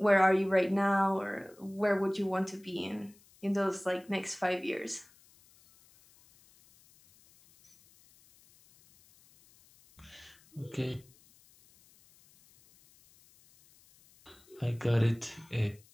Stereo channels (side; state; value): left; noise; hiss, 28 dB below the sound